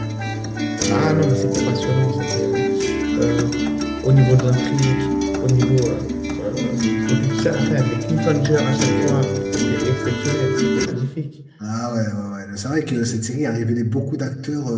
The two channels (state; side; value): identical; both; correlation 1.00